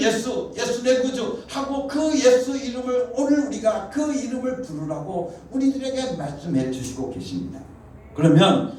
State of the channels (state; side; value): identical; both; correlation 1.00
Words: 내 구주 하고 그 예수 이름을 오늘 우리가 그 이름을 부르라고 우리들에게 말씀해 주시고 계십니다. 그러면